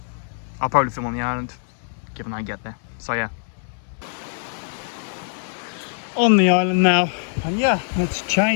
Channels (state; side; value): silent; right; 62 dB below the other